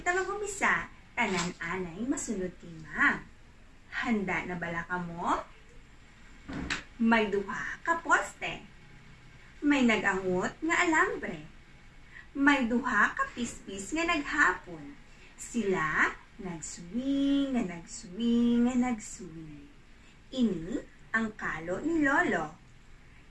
mag-umisa, tanan-anay masunod kay Ma'am. Handa na bala ka mo? May duha ka poste. May nagangot nga alambre. May duha ka pispis nga naghapon. Sila nagswing, nga nagswing, nga nagswing. Ini ang kalo ni Lolo.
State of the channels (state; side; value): identical; both; correlation 1.00